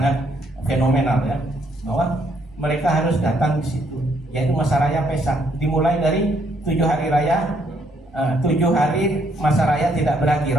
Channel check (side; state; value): left; noise; hum, 29 dB below the sound